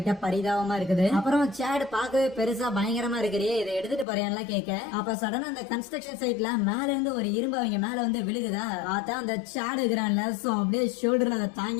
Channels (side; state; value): right; drops out; at 4.0 s